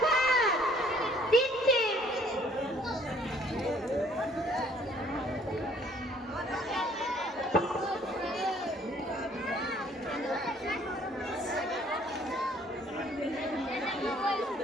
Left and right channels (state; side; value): normal; both; correlation 0.59